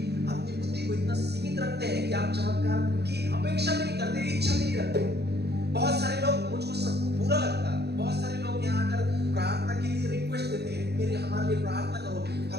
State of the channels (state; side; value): late; left; 0.48 ms